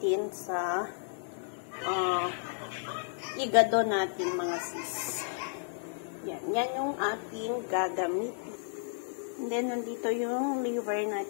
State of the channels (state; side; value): silent; right; digital silence